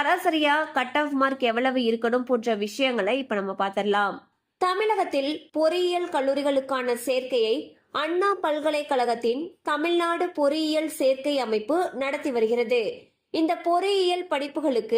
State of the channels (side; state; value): both; identical; correlation 1.00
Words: கட் ஆஃப் மார்க் எவ்வளவு இருக்கணும் போன்ற விஷயங்களை இப்ப நம்ம பார்த்திடலாம். தமிழகத்தில் பொறியியல் கல்லூரிகளுக்கான சேர்க்கையை அண்ணா பல்கலைக்கழகத்தின் தமிழ்நாடு பொறியியல் சேர்க்கை அமைப்பு நடத்தி வருகிறது. இந்த பொறியியல்